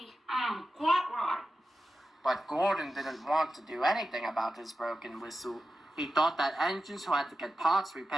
Quite right. But Gordon didn't want to do anything about his broken whistle. He thought that engines who had to get parts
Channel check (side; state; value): both; normal; correlation 0.92